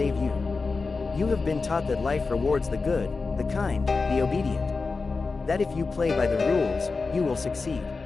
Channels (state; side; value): quieter; right; 4.2 dB